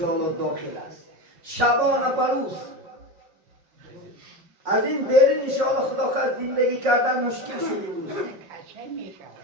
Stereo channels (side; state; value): left; late; 5.4 ms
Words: داخل است. شبانه بروز از این بیرون انشاءالله خدا خواهد زندگی کردن مشکل شد امروز.